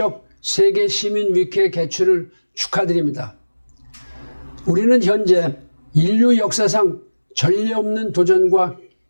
세계 시민 위크의 개최를 축하드립니다. 우리는 현재 인류 역사상 전례 없는 도전과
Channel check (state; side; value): inverted; both; correlation -1.00